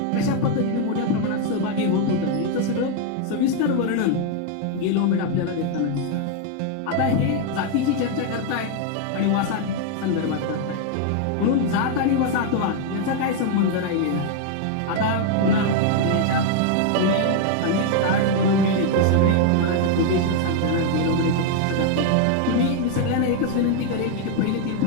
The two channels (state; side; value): different; both; correlation 0.00